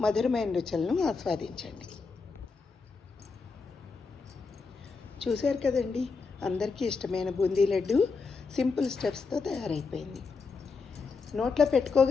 మధురమైన రుచులను ఆస్వాదించండి. చూశారు కదండి, అందరికీ ఇష్టమైన బూందీ లడ్డు సింపుల్ స్టెప్స్తో తయారైపోయింది. నోట్లో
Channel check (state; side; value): quieter; right; 4.6 dB